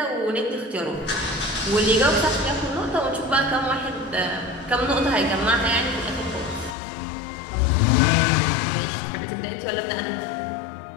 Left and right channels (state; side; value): drops out; right; at 6.8 s